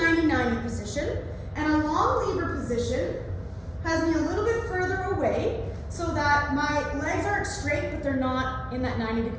position, and a long lever position has me a little bit further away so that my legs aren't straight, but they're not in that 90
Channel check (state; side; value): identical; both; correlation 1.00